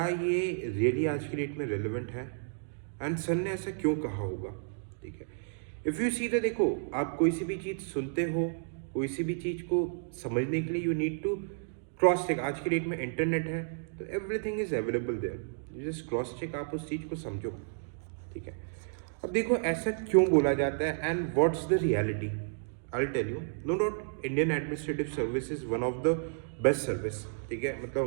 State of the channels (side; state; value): left; silent; digital silence